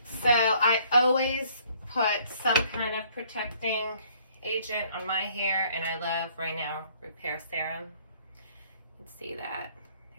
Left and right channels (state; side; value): inverted; both; correlation -0.61